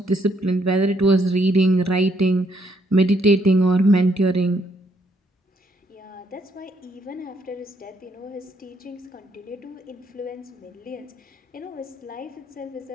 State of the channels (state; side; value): normal; both; correlation 0.71